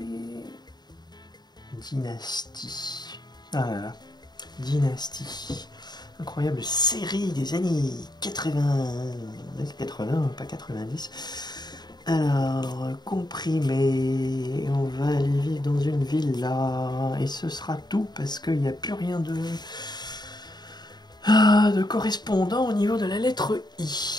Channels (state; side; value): late; right; 0.20 ms